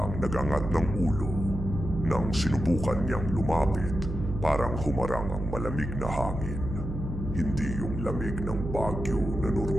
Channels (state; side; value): noise; right; hum, 6 dB below the sound